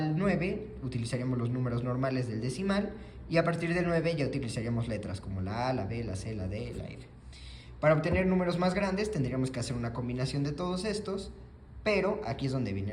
9 utilizaríamos los números normales del decimal, y a partir del 9 ya utilizaríamos letras como la A, la B, la C, la D, la F. Para obtener números más grandes tendríamos que hacer una combinación de todos estos, pero aquí es donde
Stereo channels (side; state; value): both; identical; correlation 1.00